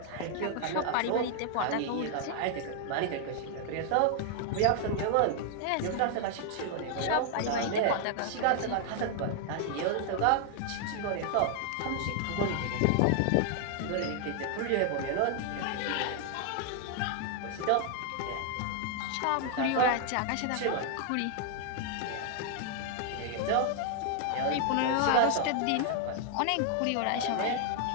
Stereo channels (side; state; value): both; different; correlation 0.00